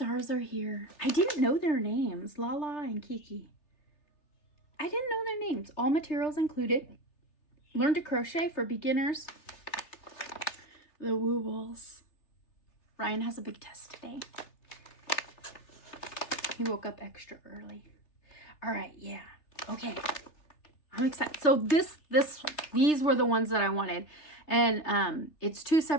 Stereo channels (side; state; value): right; late; 3.3 ms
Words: are here. I didn't know their names. Lala and Kiki. I didn't know their names. All materials included. Learn to crochet for beginners. The Wobbles. Ryan has a big test today. He woke up extra early. All right, yeah. Okay. I'm excited. So these were the ones that I wanted. And it's 2